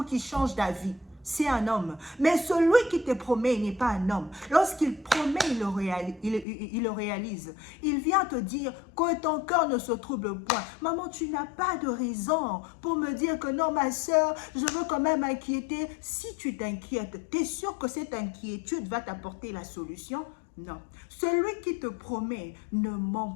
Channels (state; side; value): drops out; right; at 6.5 s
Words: qu'il change d'avis. C'est un homme. Mais celui qui te promet, il n'est pas un homme. Lorsqu'il promet, il le réalise. Il vient te dire que ton cœur ne se trouble point. Maman, tu n'as pas de raison pour me dire que non, ma soeur, je veux quand même m'inquiéter. Si tu t'inquiètes, tu es sûr que cette inquiétude va t'apporter la solution? Non. Celui qui te promet ne